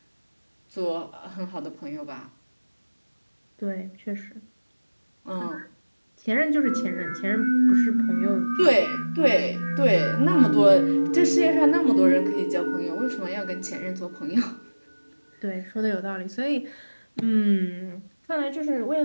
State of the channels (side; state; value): both; inverted; correlation -1.00